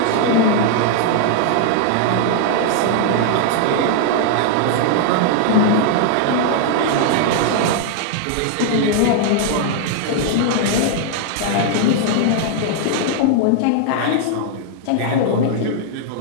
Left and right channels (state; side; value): different; both; correlation 0.00